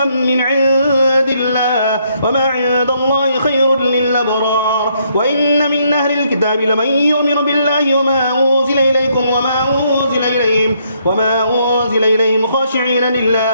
من عند الله وما عند الله خير للأبرار وإن من أهل الكتاب لمن يؤمن بالله وما أنزل إليكم وما أنزل إليهم خاشعين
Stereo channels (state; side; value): inverted; both; correlation -0.72